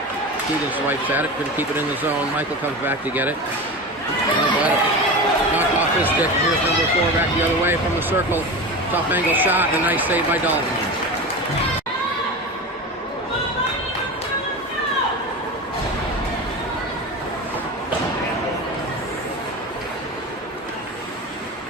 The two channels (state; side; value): normal; both; correlation 0.27